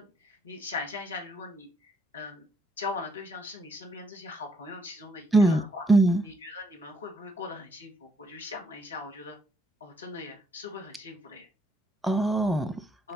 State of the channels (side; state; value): both; normal; correlation 0.73